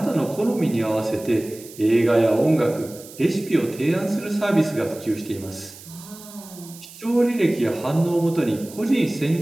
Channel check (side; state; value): right; noise; hiss, 18 dB below the sound